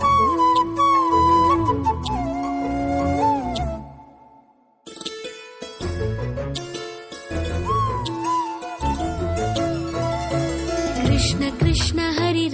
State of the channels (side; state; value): both; identical; correlation 1.00